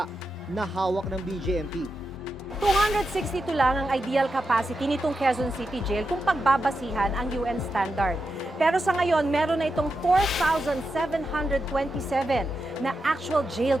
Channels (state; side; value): normal; both; correlation 0.88